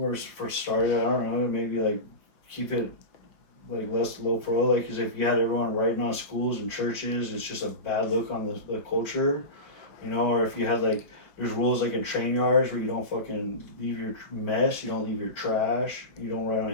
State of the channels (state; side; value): late; right; 5.1 ms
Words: first started, I don't know, maybe, like, keep it, like, less low pro, like, because if you had everyone writing on schools and churches, it's just a bad look on the culture, you know. Or if you had, like, there's rules, like, in train yards where you don't fucking leave your mess, you don't leave your trash, you don't write